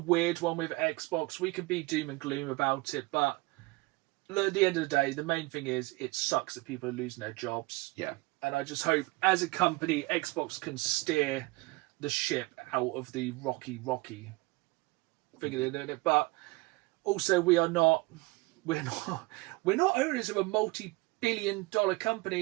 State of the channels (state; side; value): quieter; left; 23.7 dB